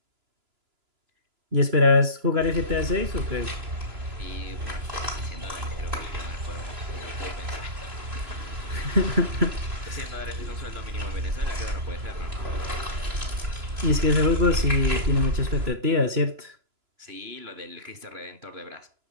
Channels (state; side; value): late; left; 3.0 ms